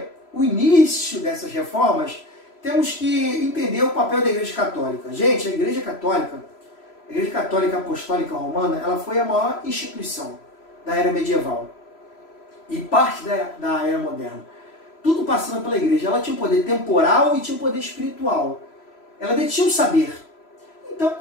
o início dessas reformas, temos que entender o papel da Igreja Católica. Gente, a Igreja Católica Apostólica Romana, ela foi a maior instituição da era medieval e parte da era moderna. Tudo passando pela igreja. Ela tinha um poder temporal e tinha um poder espiritual. Ela detinha o saber. Então,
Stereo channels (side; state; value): right; late; 3.0 ms